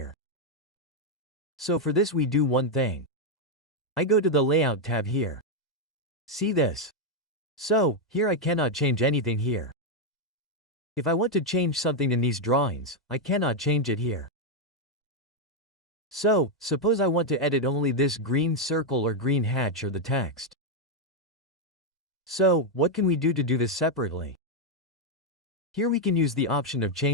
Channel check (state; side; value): normal; both; correlation 0.02